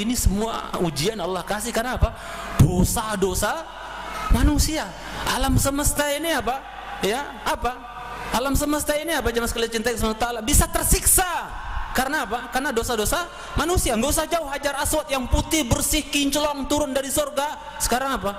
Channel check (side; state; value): both; identical; correlation 1.00